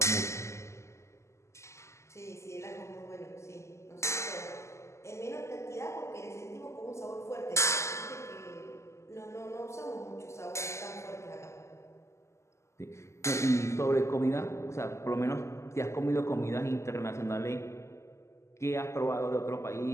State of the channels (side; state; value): right; late; 0.13 ms